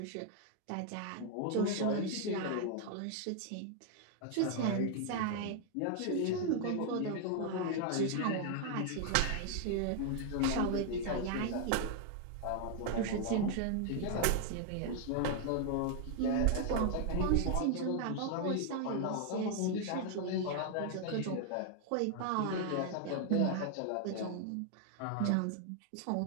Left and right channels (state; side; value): different; both; correlation 0.00